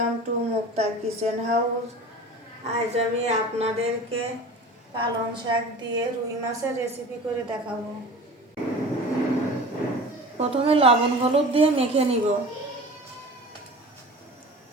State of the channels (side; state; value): both; normal; correlation 0.38